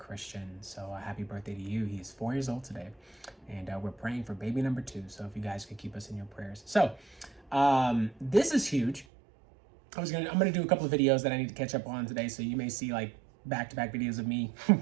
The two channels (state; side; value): drops out; left; at 9.1 s